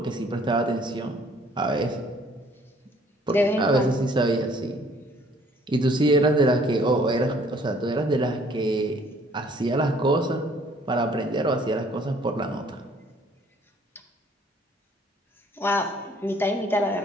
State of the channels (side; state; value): both; normal; correlation 0.59